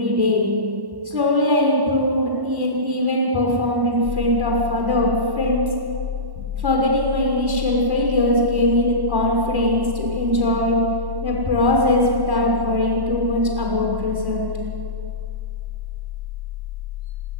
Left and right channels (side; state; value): left; late; 1.1 ms